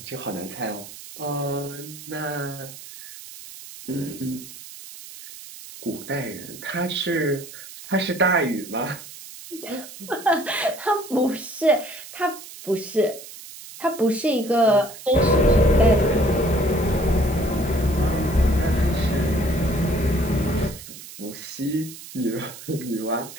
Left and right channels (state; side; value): noise; right; hiss, 15 dB below the sound